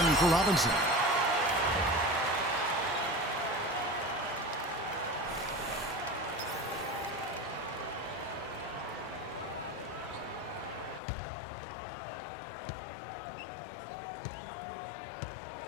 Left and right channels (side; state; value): right; drops out; at 11.0 s